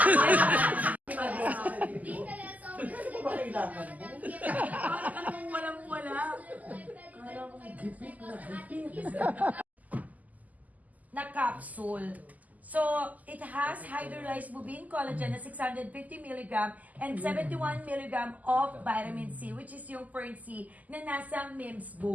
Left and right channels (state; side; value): late; left; 0.078 ms